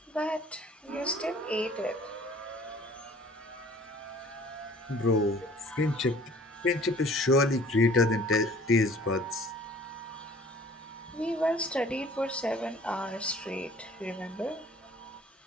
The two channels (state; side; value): normal; both; correlation 0.51